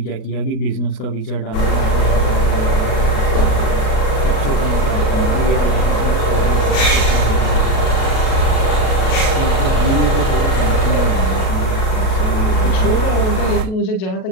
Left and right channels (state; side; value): late; right; 37 ms